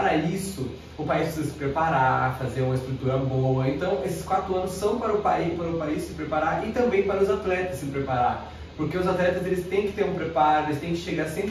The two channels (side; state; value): both; identical; correlation 1.00